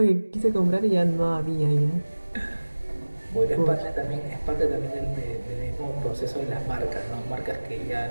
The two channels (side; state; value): both; inverted; correlation -1.00